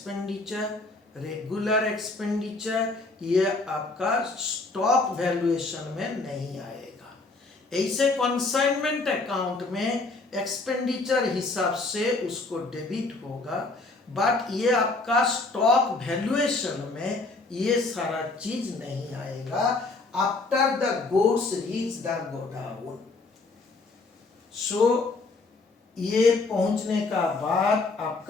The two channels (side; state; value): right; quieter; 3.5 dB